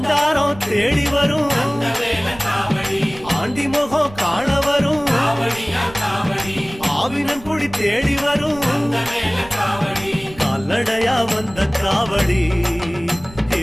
தேடி வரும், ஆண்டி முகம் காண வரும், ஆவினன் குடி தேடி வரும், கால்நடையா வந்த காவடி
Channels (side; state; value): right; noise; rumble, 18 dB below the sound